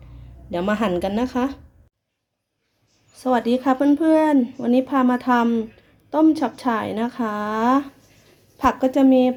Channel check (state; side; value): identical; both; correlation 1.00